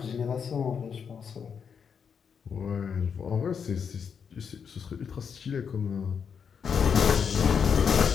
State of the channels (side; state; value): right; quieter; 6.8 dB